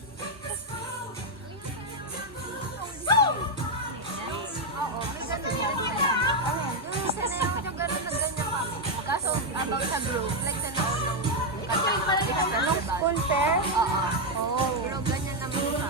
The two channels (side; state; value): both; normal; correlation 0.02